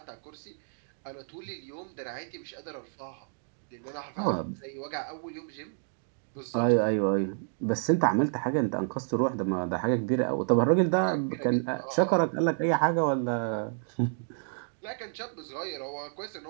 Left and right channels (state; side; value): silent; left; digital silence